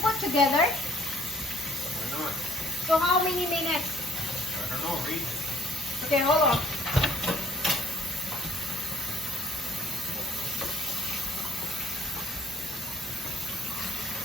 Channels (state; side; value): normal; both; correlation 0.61